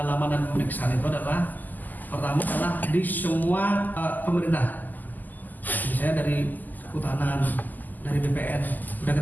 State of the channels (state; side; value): late; right; 0.084 ms